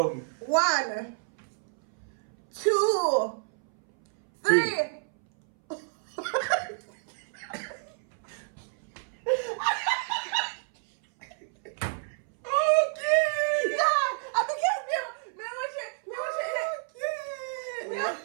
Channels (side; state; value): left; silent; 59 dB below the other